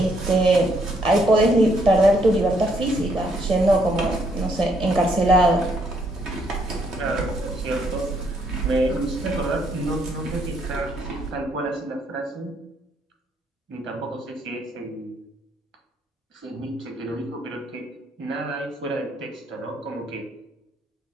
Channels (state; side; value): normal; both; correlation 0.71